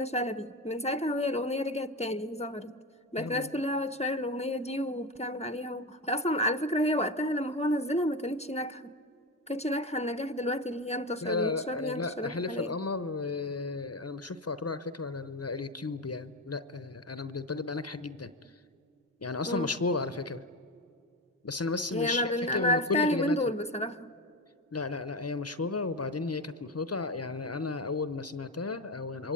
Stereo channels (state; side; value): normal; both; correlation 0.19